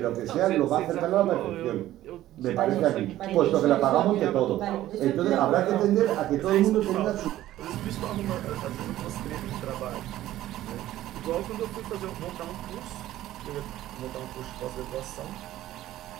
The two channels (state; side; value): quieter; left; 14.2 dB